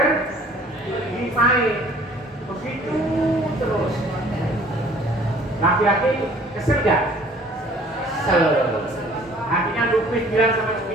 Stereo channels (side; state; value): both; normal; correlation 0.53